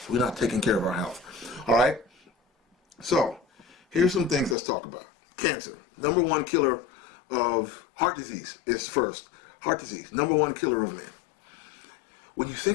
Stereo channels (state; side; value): drops out; right; at 4.5 s